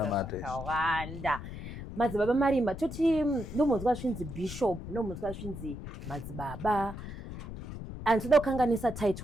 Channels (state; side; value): noise; left; rumble, 9 dB below the sound